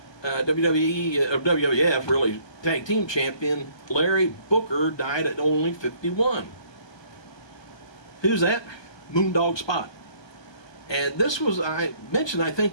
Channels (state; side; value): late; right; 1.2 ms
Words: WWF really tag team champion Larry Booker died at only 51. Who's that? Moondog Spot. And this was, I mentioned, I think,